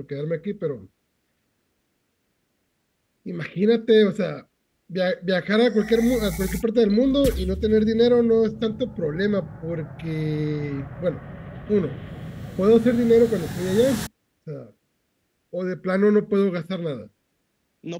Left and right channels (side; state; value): both; identical; correlation 1.00